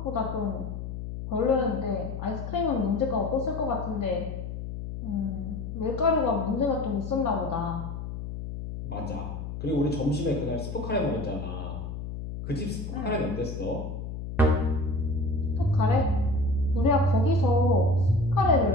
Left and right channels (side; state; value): left; noise; hum, 7 dB below the sound